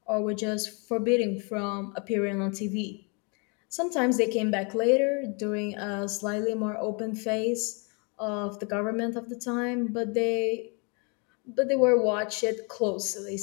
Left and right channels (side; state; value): right; quieter; 34.1 dB